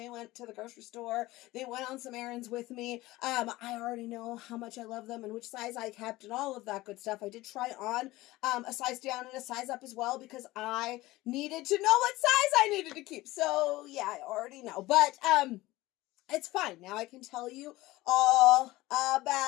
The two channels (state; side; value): quieter; right; 18.6 dB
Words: went to the grocery store. They went on some errands with me. I already know how much I love them and which size I kept and all of that good stuff. I did try on a size down and a size up as well because I needed to know what size I needed to keep. So yeah, I already know. But it's fine. Now I can tell you all